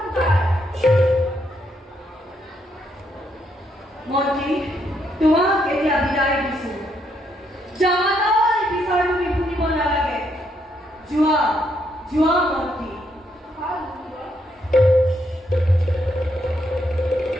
মন্ত্ৰী তোমাক এতিয়া বিদায় দিছো। জামাতাৰ বিচাৰ তুমি শুনিব নালাগে। যোৱা যোৱা মন্ত্ৰী।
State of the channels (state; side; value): normal; both; correlation 0.75